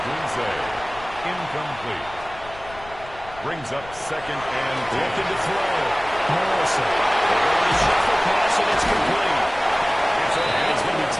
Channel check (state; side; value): noise; left; rumble, 19 dB below the sound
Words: Incomplete. Brings up 2nd and 10. Looking to throw. Morrison. They're going to shuffle pass, and it's complete. And he's going to be